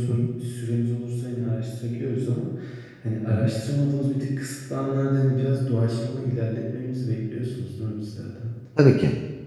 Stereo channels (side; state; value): both; identical; correlation 1.00